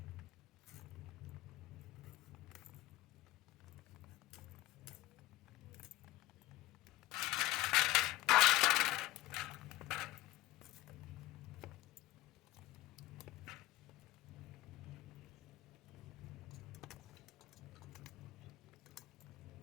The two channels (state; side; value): quieter; right; 17.4 dB